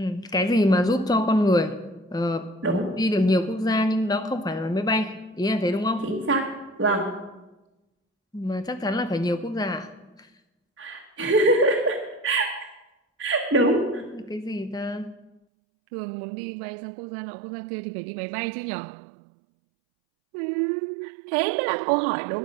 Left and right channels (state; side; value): drops out; left; at 15.4 s